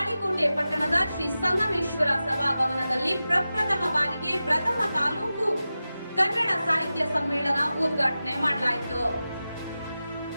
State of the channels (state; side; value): inverted; both; correlation -0.94